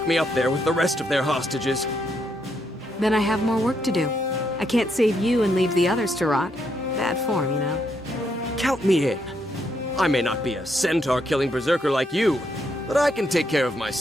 me up there with the rest of their hostages. Then I have more work to do. I can't save you and leave the others to rot. Bad form, you know. Count me in. I may not be a centaur-killing berserker like you, but I can take care of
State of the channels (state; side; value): normal; both; correlation 0.76